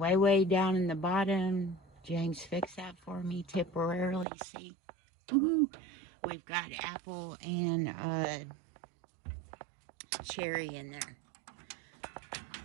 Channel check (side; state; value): left; drops out; at 4.2 s